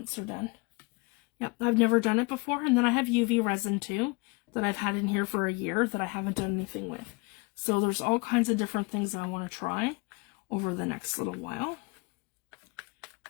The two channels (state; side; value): quieter; right; 28.0 dB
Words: they're done. Yep, I've never done it before. And then I have UV resin too, that I've had in here for a year that I haven't done anything with. So there's all kinds of different things that I want to try over the next little while.